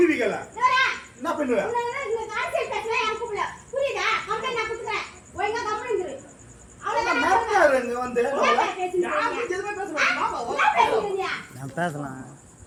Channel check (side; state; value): both; identical; correlation 1.00